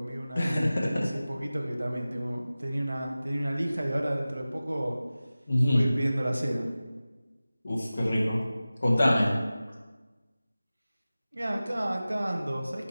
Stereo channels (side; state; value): both; inverted; correlation -0.96